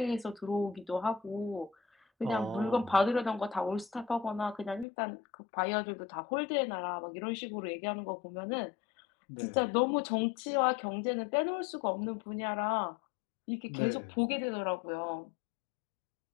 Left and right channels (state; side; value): drops out; right; at 4.9 s